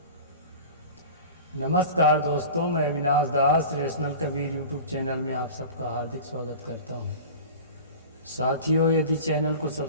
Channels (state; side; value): inverted; both; correlation -0.36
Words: नमस्कार दोस्तों, मैं अविनाश दास रेशनल कबीर यूट्यूब चैनल में आप सबका हार्दिक स्वागत करता हूं। साथियों, यदि चैनल को